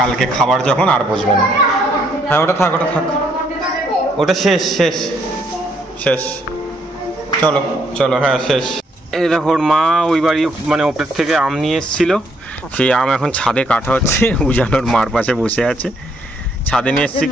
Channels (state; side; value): normal; both; correlation 0.71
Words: খাবার যখন আর বসবে না। হ্যাঁ ওটা থাক ওটা শেষ শেষ শেষ। চলো চলো হ্যাঁ শেষ। এই দেখো মা ওই বাড়ি মানে ওপর থেকে আম নিয়ে এসেছিল, সেই আম এখন ছাদে কাটা হচ্ছে। উজানোর মার পাশে বসে আছে। ছাদে নিয়ে এসেছি